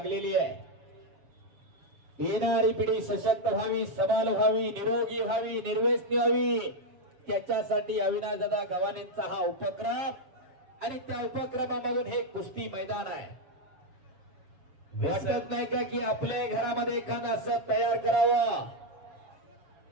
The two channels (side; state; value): left; late; 7.1 ms